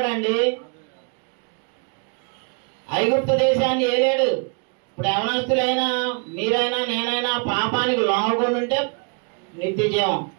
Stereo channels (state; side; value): quieter; left; 36.3 dB